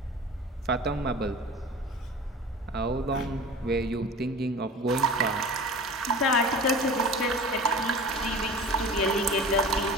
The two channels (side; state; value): both; normal; correlation 0.38